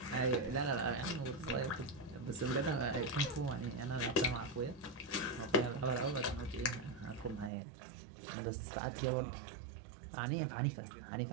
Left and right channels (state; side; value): drops out; left; at 7.5 s